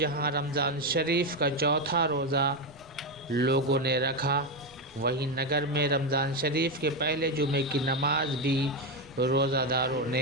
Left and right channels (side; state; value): right; noise; rumble, 28 dB below the sound